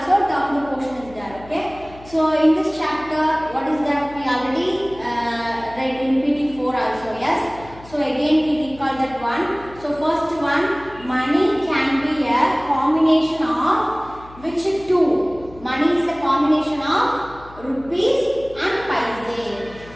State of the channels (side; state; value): left; noise; hum, 20 dB below the sound